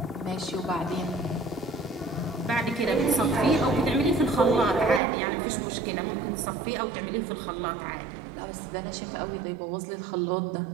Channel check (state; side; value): drops out; left; at 5.0 s